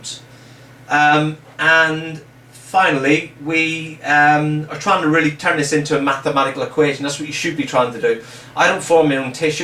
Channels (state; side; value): identical; both; correlation 1.00